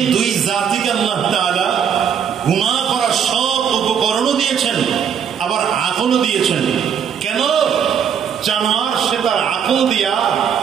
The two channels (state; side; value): quieter; left; 7.8 dB